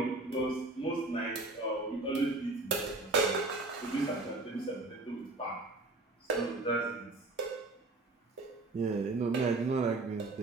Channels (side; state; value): left; quieter; 3.1 dB